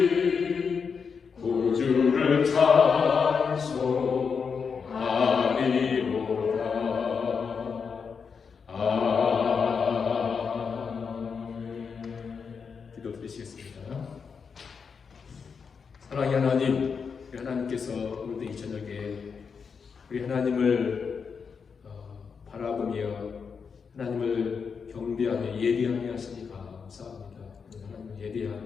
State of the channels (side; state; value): right; quieter; 5.9 dB